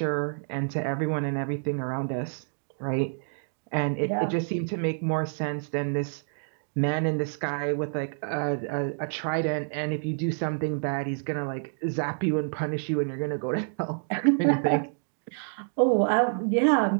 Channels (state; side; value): silent; left; digital silence